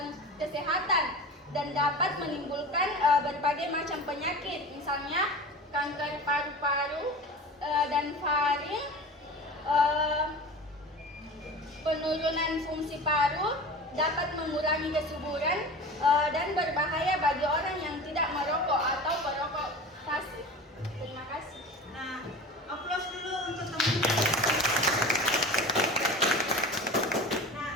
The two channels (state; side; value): normal; both; correlation 0.34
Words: dan dapat menimbulkan berbagai macam penyakit, misalnya kanker paru-paru dan faring, penurunan fungsi paru, dapat mengurangi kesuburan, dan berbahaya bagi orang yang tidak merokok atau perokok pasif. Terima kasih. Nah, aplaus dulu untuk teman-teman. Nah,